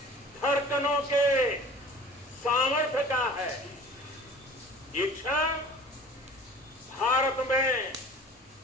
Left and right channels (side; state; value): both; normal; correlation 0.44